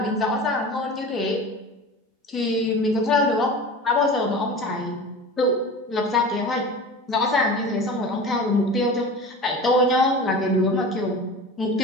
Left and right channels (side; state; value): both; normal; correlation 0.35